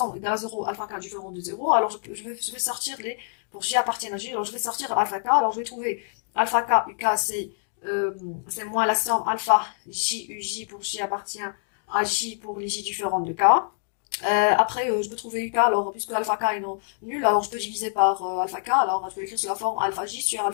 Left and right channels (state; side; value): silent; right; digital silence